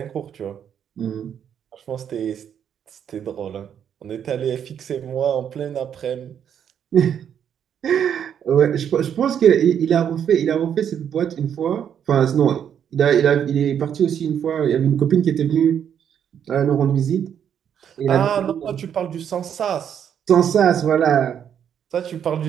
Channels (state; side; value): quieter; left; 8.7 dB